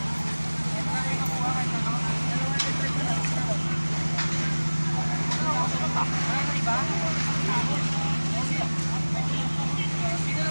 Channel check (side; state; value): both; inverted; correlation -1.00